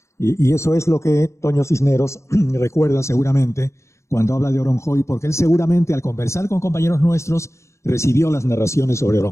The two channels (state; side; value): late; right; 0.14 ms